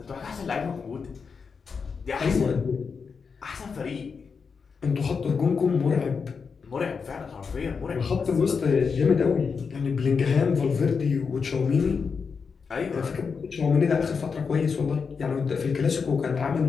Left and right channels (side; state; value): right; quieter; 5.6 dB